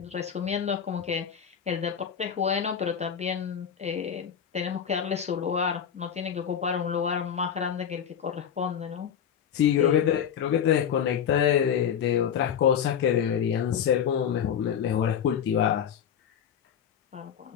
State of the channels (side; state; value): right; quieter; 8.3 dB